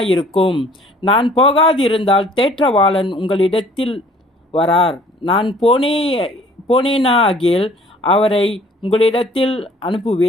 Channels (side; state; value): both; normal; correlation 0.55